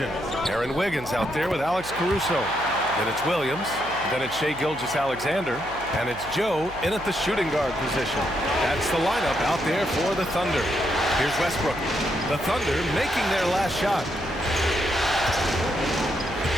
Aaron Wiggins out there with Alex Caruso. Then it's Williams. Then it's Shai Gilgeous-Alexander. And it's Joe in at the shooting guard position. That's the lineup out there for the Thunder. Here's Westbrook. The Thunder making their last shot.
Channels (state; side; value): noise; right; hum, 16 dB below the sound